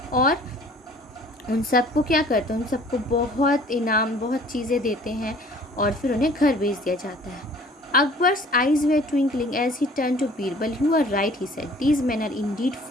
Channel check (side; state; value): both; normal; correlation 0.52